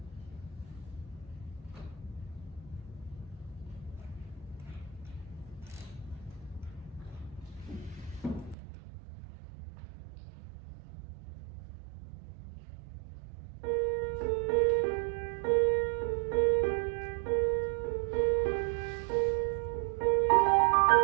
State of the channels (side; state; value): left; drops out; at 8.6 s